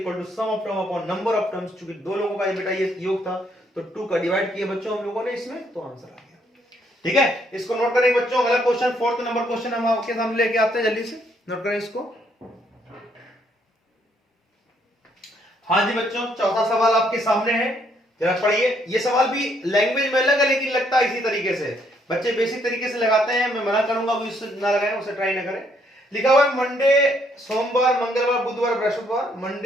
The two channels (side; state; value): both; normal; correlation 0.70